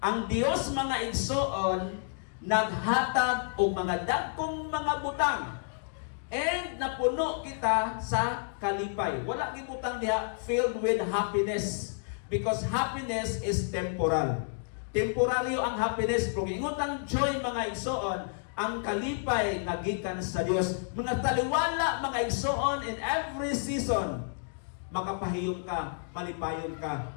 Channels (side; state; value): right; silent; digital silence